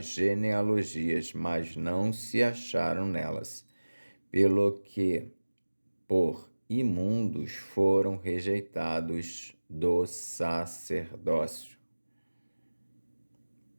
genealogias, mas não se acharam nelas, pelo que, por imundos, foram rejeitados do sacerdócio.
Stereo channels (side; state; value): both; inverted; correlation -1.00